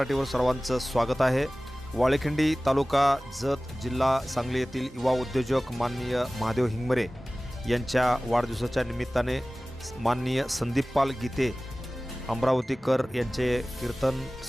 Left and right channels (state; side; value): normal; both; correlation 0.98